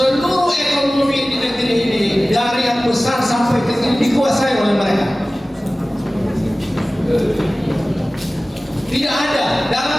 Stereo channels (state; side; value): normal; both; correlation 0.97